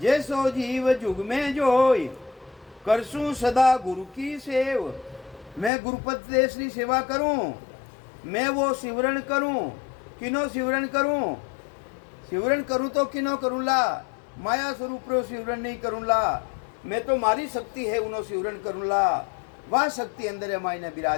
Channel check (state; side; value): drops out; right; at 5.7 s